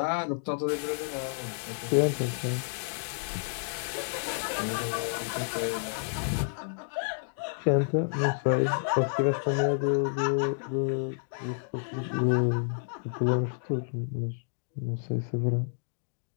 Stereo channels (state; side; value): silent; right; digital silence